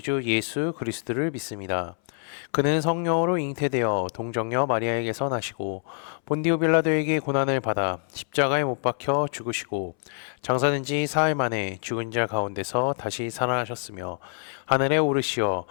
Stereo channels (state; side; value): silent; right; 61 dB below the other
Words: 주 예수 그리스도를 믿습니다. 그는 성령으로 잉태되어 동정녀 마리아에게서 나시고 본디오 빌라도에게 고난을 받아 십자가에 못 박혀 죽으시고 장사된 지 사흘 만에 죽은 자 가운데서 다시 살아나셨으며 하늘에 오르시어